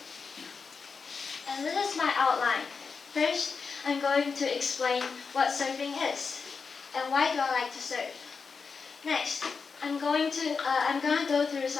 And this is my outline. First, I'm going to explain what surfing is and why do I like to surf. Next, I'm gonna go through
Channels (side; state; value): right; quieter; 5.2 dB